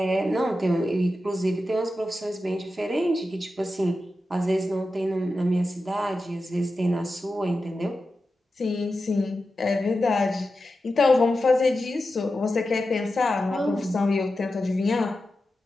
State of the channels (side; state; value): both; normal; correlation 0.91